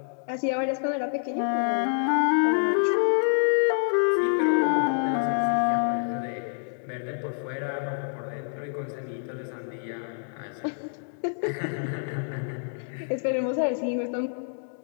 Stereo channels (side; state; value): right; silent; digital silence